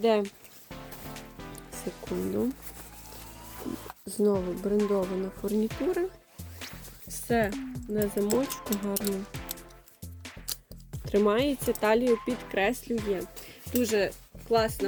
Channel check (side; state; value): both; identical; correlation 1.00